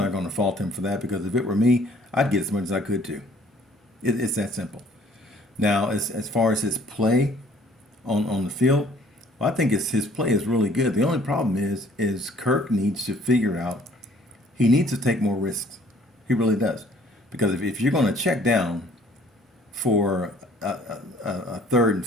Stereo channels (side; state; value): both; normal; correlation 0.57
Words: going to fault him for that because if it were me, I'd get as much as I could too. It's that simple. Now, as far as his play on the field, well, I think his play is really good. The only problem is Kirk needs to figure out, he needs to take more risks. He really does. Because if you're going to check down for a 3rd and